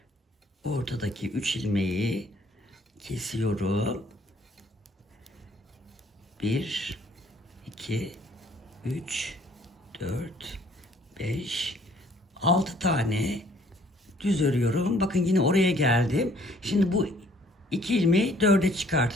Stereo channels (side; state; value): both; normal; correlation 0.60